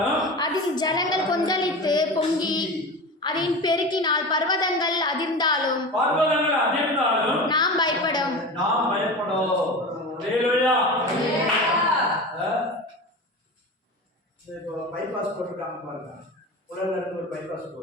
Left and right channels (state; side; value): normal; both; correlation 0.29